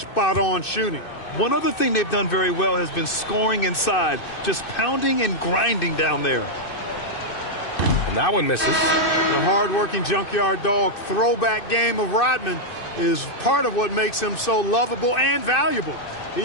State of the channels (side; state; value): right; late; 2.6 ms